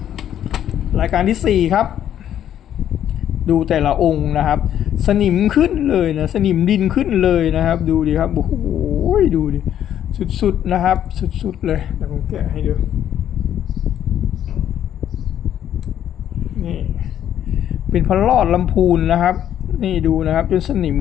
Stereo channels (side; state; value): right; quieter; 10.5 dB